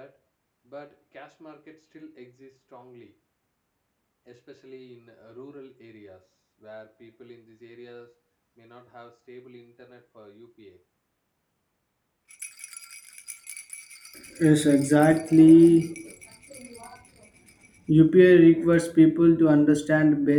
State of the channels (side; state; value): both; identical; correlation 1.00